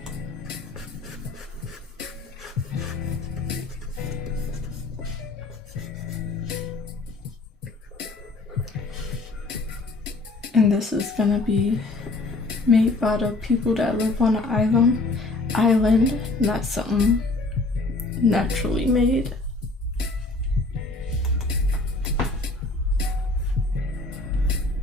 And this is gonna be made by the people that live on an island, not something naturally made.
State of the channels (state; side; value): quieter; right; 3.2 dB